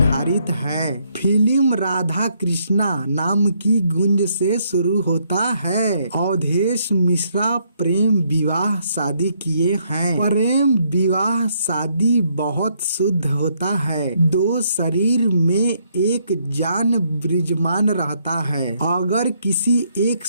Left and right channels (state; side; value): inverted; both; correlation -0.72